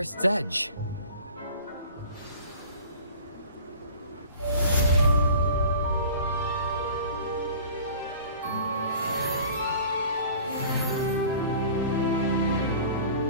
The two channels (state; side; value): inverted; both; correlation -0.44